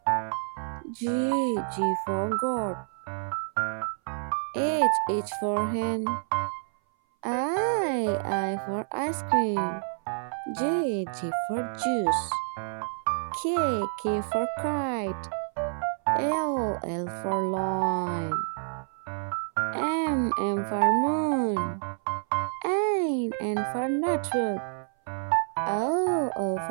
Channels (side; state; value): left; silent; 57 dB below the other